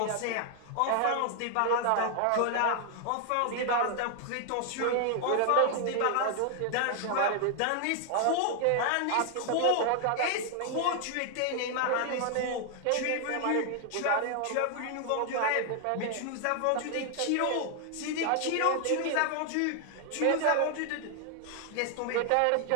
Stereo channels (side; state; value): both; different; correlation 0.00